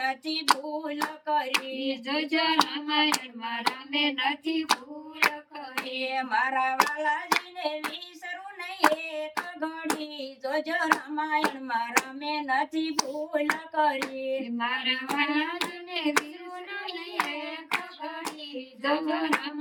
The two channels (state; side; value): identical; both; correlation 1.00